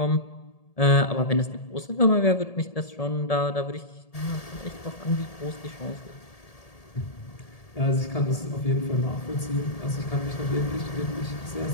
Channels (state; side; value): late; right; 1.7 ms